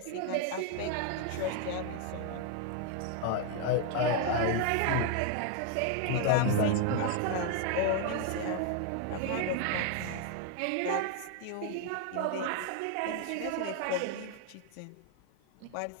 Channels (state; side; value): different; both; correlation 0.00